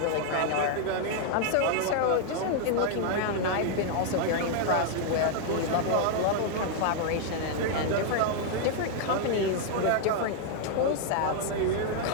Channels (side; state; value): both; different; correlation 0.00